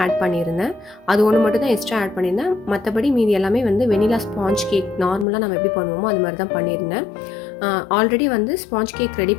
ஆட் பண்ணியிருந்தேன். அது ஒன்று மட்டும் தான் எக்ஸ்ட்ரா ஆட் பண்ணியிருந்தேன். மற்றபடி மீதி எல்லாமே வெனிலா ஸ்பாஞ்ச் கேக் நார்மலாக நம்ம எப்படி பண்ணுவோமோ அது மாதிரி தான் பண்ணியிருந்தேன். ஆல்ரெடி ஸ்பாஞ்ச் கேக் ரெடி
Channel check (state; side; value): drops out; right; at 5.2 s